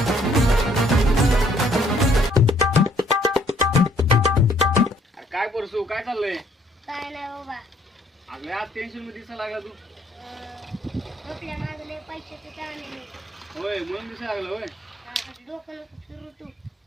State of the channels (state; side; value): normal; both; correlation 0.64